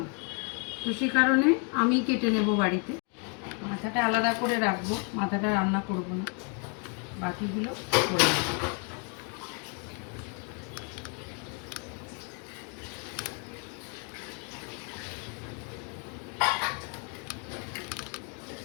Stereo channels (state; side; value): quieter; right; 38.2 dB